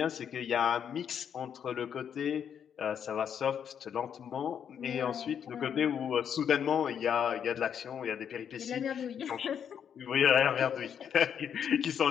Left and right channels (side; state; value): right; quieter; 8.2 dB